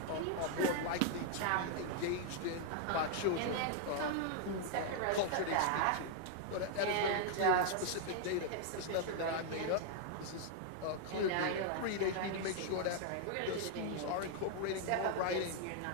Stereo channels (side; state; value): both; different; correlation 0.00